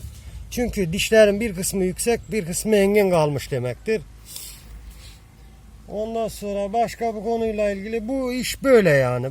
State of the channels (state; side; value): identical; both; correlation 1.00